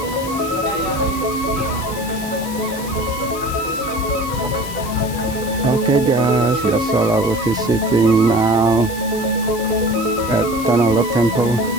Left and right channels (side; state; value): left; noise; hiss, 13 dB below the sound